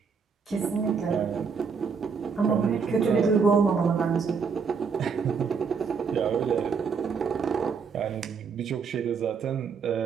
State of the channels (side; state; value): left; quieter; 5.7 dB